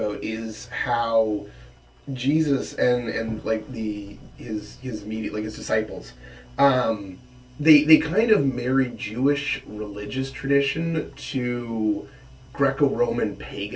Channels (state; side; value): identical; both; correlation 1.00